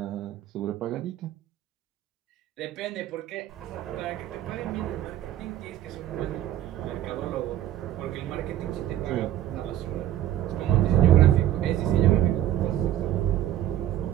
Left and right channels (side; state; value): left; quieter; 12.4 dB